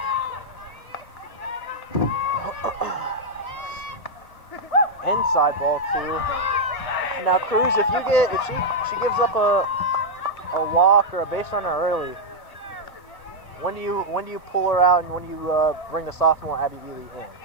outside ball too. Now Cruz, if she gives up a walk or a base runner early, when do you pull her out and when do you bring the sophomore Abby Ely in?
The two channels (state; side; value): late; right; 1.6 ms